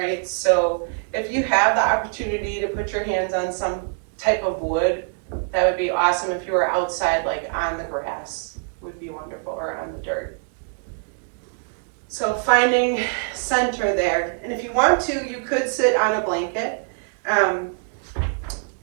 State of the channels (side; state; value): left; silent; 63 dB below the other